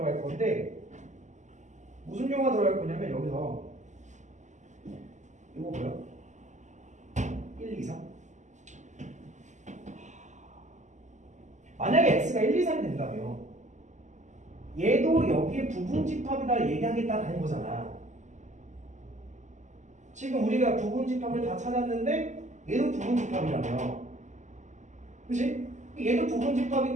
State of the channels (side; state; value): left; late; 0.34 ms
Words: 건데, 무슨 용어가 들어갈 거냐면 여기서 이거 뭐야? 1, 2, 3. 만약에 X가 1, 2, 3이 된다면 얘도 여기에 부분 집합이다 얘기하겠다는 거잖아. 지금 우리가 부분 집합을 다 찾았는데 얘도 부분 집합이라며. 그치? 얘도 부분